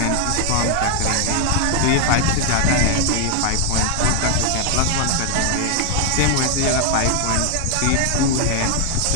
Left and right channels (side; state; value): both; different; correlation 0.00